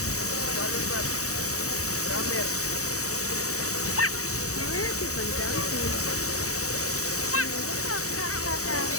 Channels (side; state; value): right; late; 0.65 ms